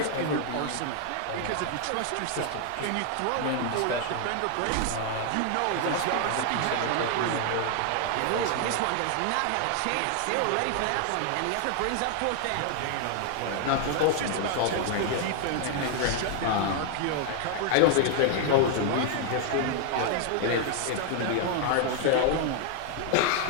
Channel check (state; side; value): different; both; correlation 0.00